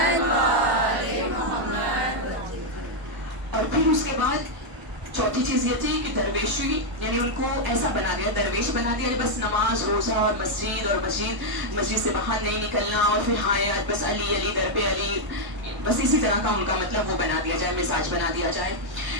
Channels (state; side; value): late; left; 1.0 ms